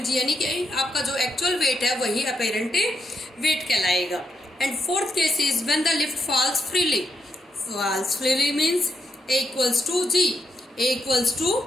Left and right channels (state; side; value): normal; both; correlation 0.80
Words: G, यानी कि आपका जो एक्चुअल वेट है वही अपैरेंट वेट कहलाएगा। And fourth case is when the lift falls freely. Falls freely means a equals to g. A equals to